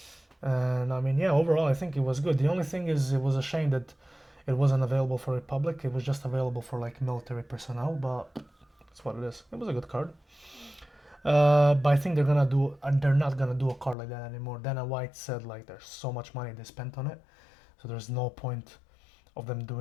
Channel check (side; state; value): right; drops out; at 14.0 s